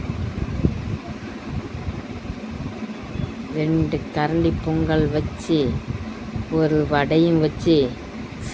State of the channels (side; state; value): both; identical; correlation 1.00